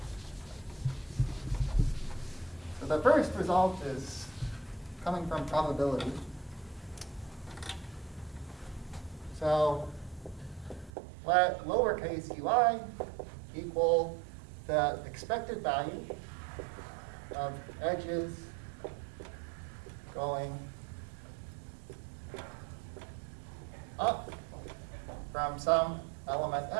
The first result is coming from probability. So let lowercase ui equal the expected value of edges going up from some element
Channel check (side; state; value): left; drops out; at 10.9 s